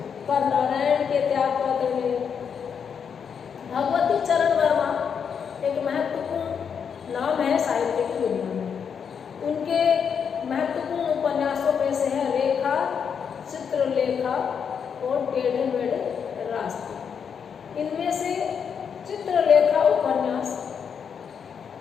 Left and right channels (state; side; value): quieter; right; 7.0 dB